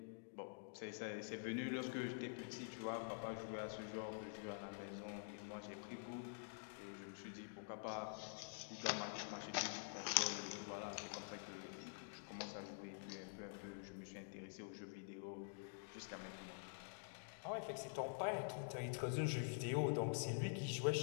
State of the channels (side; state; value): right; silent; digital silence